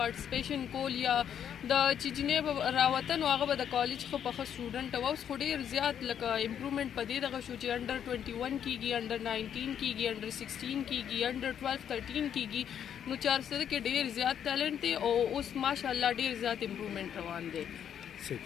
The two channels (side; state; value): right; quieter; 9.0 dB